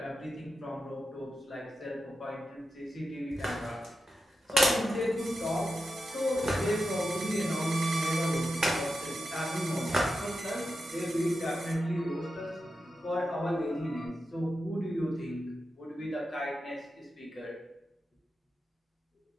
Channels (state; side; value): normal; both; correlation 0.90